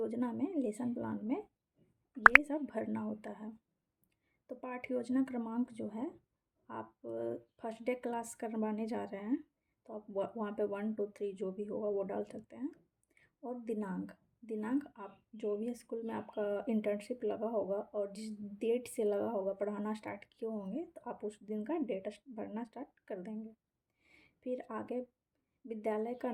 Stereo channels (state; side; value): identical; both; correlation 1.00